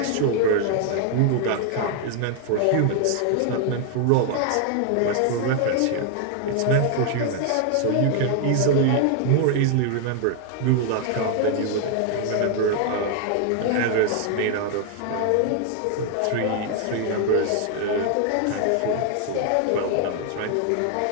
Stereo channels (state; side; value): different; both; correlation 0.00